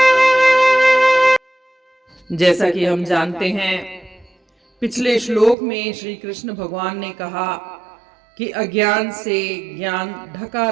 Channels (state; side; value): drops out; left; at 5.6 s